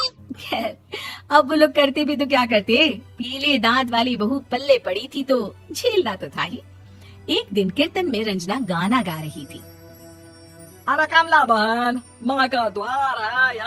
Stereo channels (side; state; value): both; identical; correlation 1.00